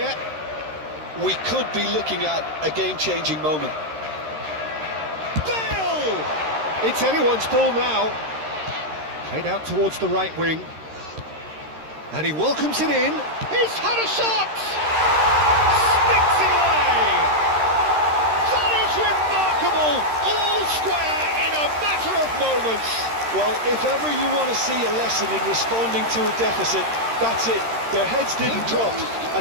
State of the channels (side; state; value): left; late; 13 ms